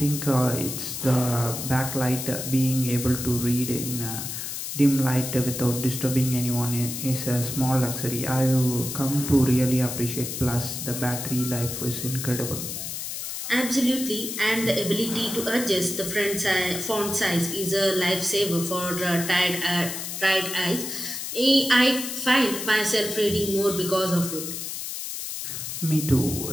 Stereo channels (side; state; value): left; noise; hiss, 6 dB below the sound